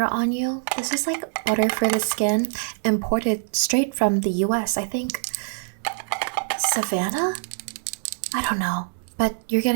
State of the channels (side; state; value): left; silent; 62 dB below the other